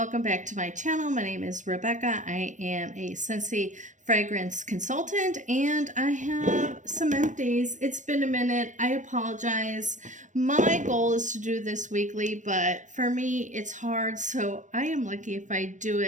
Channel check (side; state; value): left; late; 0.36 ms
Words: back to my channel. My name is Rebecca. I am a Scentsy fragrance consultant and I have some empties. It's been a minute. I apologize. My goal is to do this weekly, but for me it's hard, so I am lucky if I do